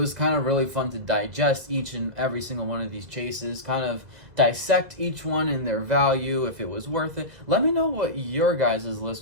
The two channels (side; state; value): left; late; 2.1 ms